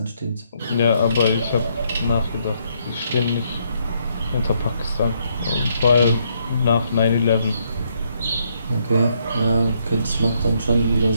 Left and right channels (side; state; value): both; inverted; correlation -0.73